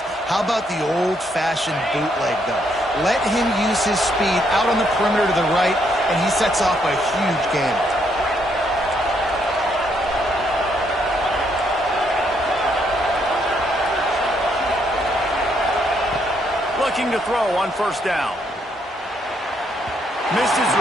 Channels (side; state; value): both; normal; correlation 0.73